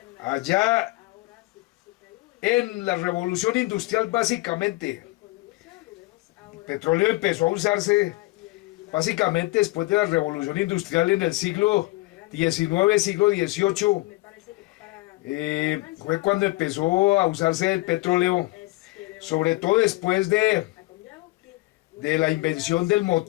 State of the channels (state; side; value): quieter; right; 21.1 dB